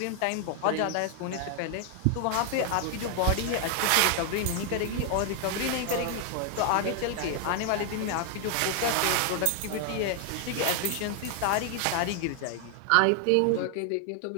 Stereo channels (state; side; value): different; both; correlation 0.00